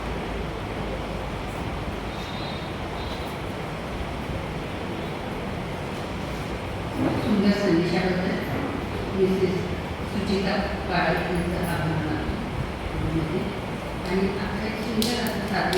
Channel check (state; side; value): identical; both; correlation 1.00